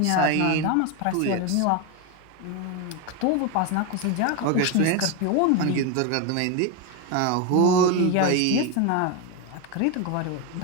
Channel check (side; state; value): both; different; correlation 0.02